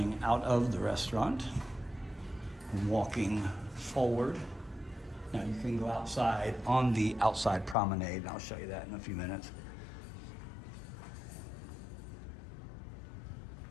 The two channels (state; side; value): drops out; right; at 7.8 s